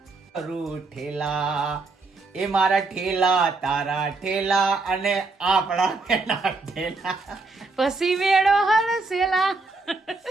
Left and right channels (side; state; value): left; quieter; 3.6 dB